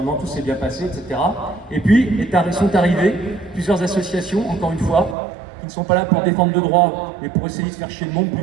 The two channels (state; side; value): drops out; left; at 5.2 s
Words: tout s'est bien passé, etc. Et puis sont arrivées plusieurs associations, encore une fois, qui ne sont pas là pour défendre le droit, mais pour essayer de faire chier le monde